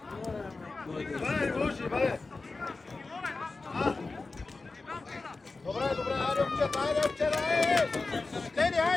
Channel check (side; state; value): right; quieter; 3.7 dB